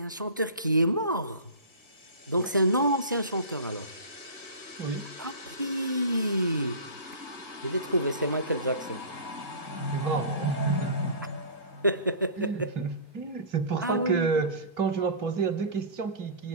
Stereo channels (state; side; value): inverted; both; correlation -0.36